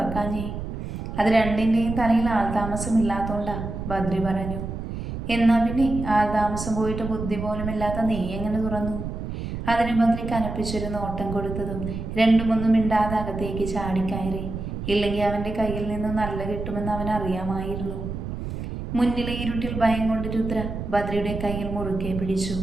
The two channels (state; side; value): noise; right; rumble, 6 dB below the sound